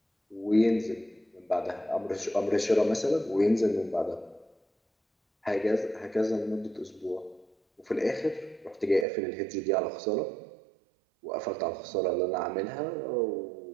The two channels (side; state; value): left; drops out; at 9.1 s